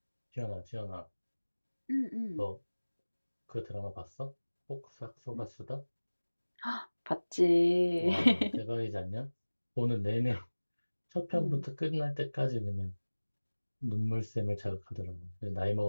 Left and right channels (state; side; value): inverted; both; correlation -1.00